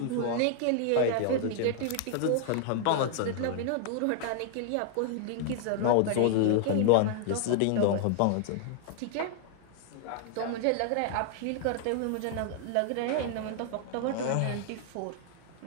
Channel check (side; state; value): both; different; correlation 0.00